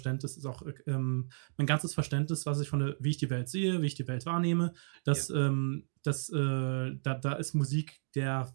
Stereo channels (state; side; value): silent; left; digital silence